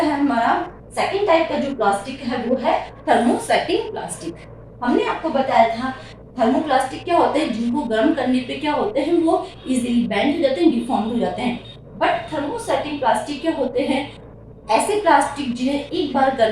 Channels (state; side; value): identical; both; correlation 1.00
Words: हमारा सेकंड टाइप का जो प्लास्टिक है वो है थर्मोसेटिंग प्लास्टिक। हमने आपको बताया था थर्मोप्लास्टिक क्या होते हैं, जिनको गर्म करने पे क्या होते हैं, वो इजीली बेंड हो जाते हैं, डिफॉर्म हो जाते हैं। बट थर्मोसेटिंग प्लास्टिक क्या होते हैं, ऐसे प्लास्टिक जिन्हें एक बार